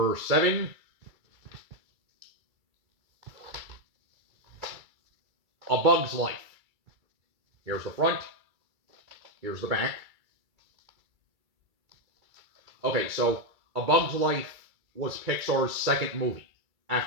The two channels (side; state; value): left; late; 2.3 ms